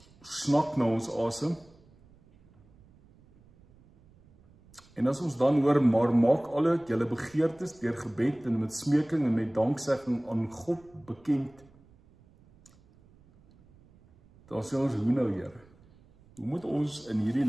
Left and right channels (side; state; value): right; noise; rumble, 28 dB below the sound